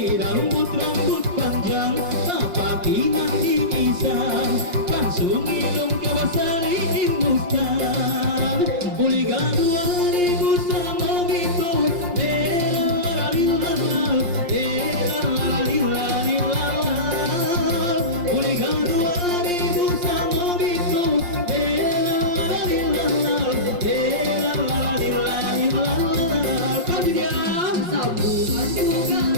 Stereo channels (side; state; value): left; late; 5.7 ms